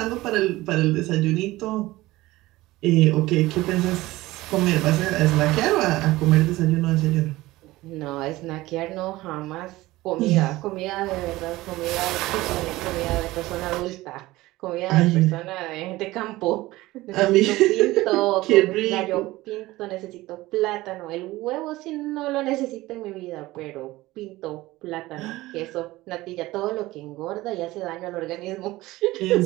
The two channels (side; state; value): left; quieter; 18.5 dB